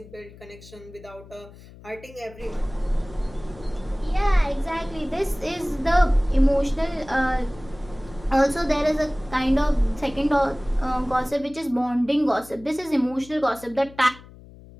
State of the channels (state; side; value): noise; left; hum, 20 dB below the sound